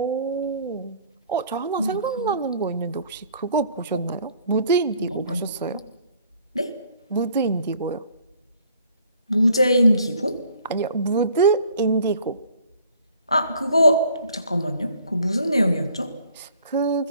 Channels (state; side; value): inverted; both; correlation -0.57